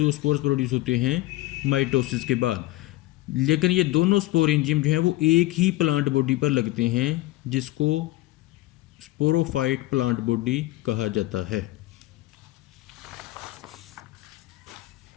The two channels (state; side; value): quieter; right; 18.0 dB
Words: प्रोड्यूस होते हैं माइटोसिस के बाद। लेकिन ये दोनों स्पोरेंजियम जो हैं वो एक ही प्लांट बॉडी पर लगते हैं, जिसको स्पोरोफाइट प्लांट बॉडी कहा जाता है।